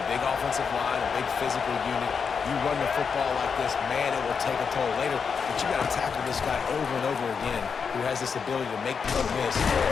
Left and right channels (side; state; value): right; quieter; 6.0 dB